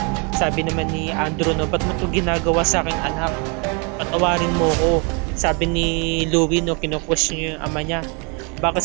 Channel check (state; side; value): quieter; left; 33.7 dB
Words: Sabi naman ni Andrew, no, ba't mo ito ginagawa sa aking anak? Patawarin mo ko. Sabi ni Louie, no, kinu-question niya yung ama niya. Baka